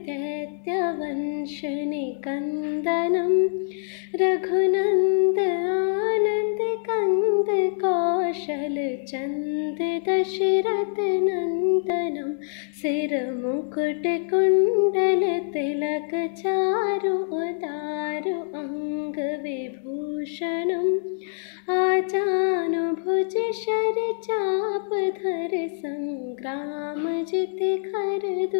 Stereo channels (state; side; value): silent; right; digital silence